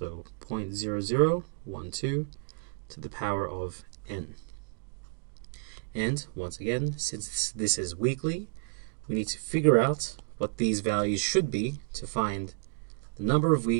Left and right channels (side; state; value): left; silent; digital silence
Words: 0.0012 to the power of n. And once again, since this is weekly, we need to figure out what these values should be to find the number of